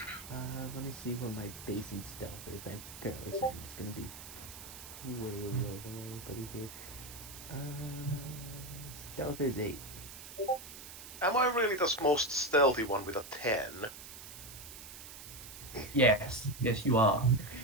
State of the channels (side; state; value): right; noise; hiss, 13 dB below the sound